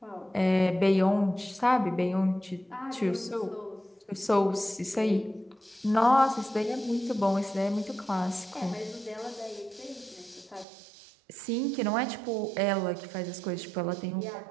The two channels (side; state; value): left; drops out; at 10.7 s